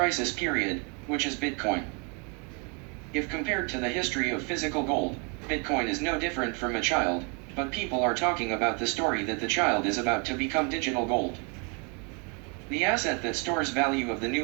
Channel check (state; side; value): quieter; left; 34.3 dB